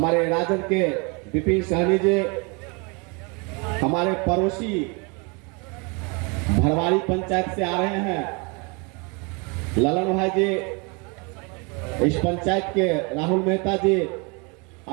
राजद के विपिन सहनी जी, हमारे पड़ोसी भरवाड़ी पंचायत से आ रहे हैं ललन भाई जी, इस पंचायत के राहुल मेहता जी,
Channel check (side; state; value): left; quieter; 31.4 dB